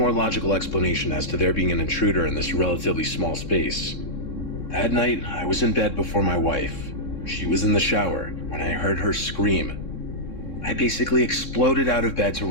logical explanation as to there being an intruder in this relatively small space. That night, I was in bed before my wife. She was in the shower when I heard her scream. I basically exploded out of bed to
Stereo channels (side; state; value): right; late; 3.7 ms